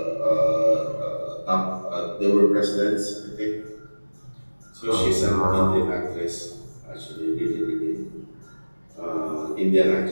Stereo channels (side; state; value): both; inverted; correlation -1.00